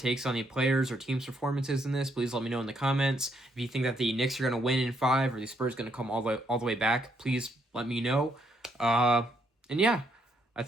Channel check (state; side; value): normal; both; correlation 0.73